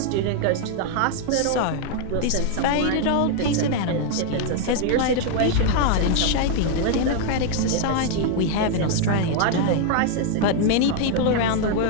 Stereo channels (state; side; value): different; both; correlation 0.00